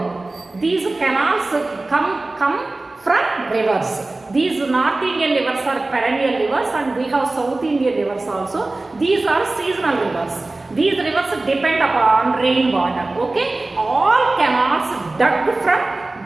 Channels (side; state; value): left; quieter; 3.1 dB